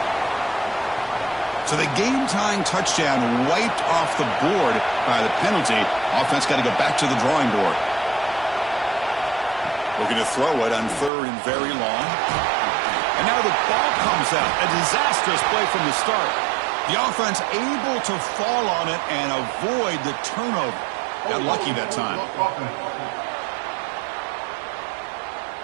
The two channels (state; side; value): drops out; left; at 11.1 s